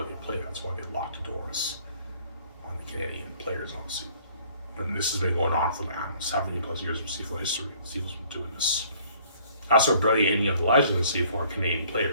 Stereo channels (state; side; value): inverted; both; correlation -0.58